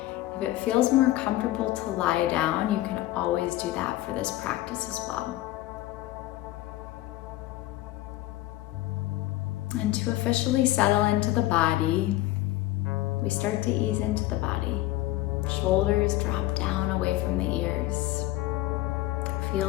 If it feels more comfortable to lie down, you can always do that for this practice as well. And to officially settle into the body, we start to ease into the body. Shoulders drop down away from the ears.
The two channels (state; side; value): quieter; right; 16.5 dB